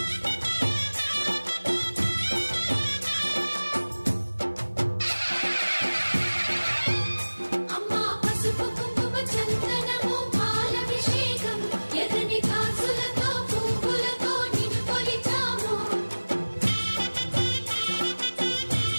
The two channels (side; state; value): both; inverted; correlation -1.00